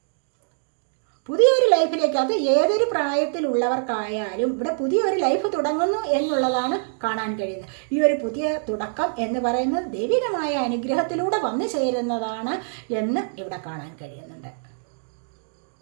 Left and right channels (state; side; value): silent; left; digital silence